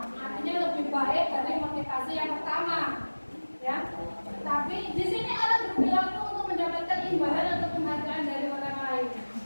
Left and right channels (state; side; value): inverted; both; correlation -1.00